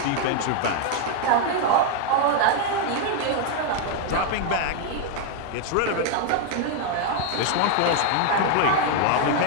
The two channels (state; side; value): different; both; correlation 0.01